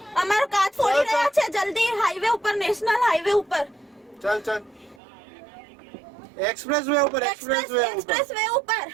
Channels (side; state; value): left; drops out; at 5.0 s